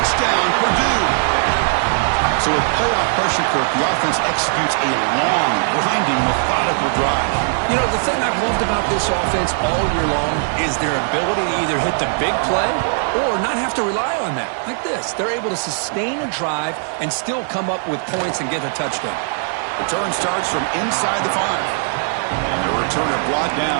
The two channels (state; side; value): silent; left; 66 dB below the other